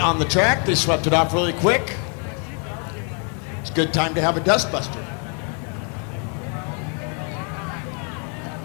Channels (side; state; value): right; quieter; 39.9 dB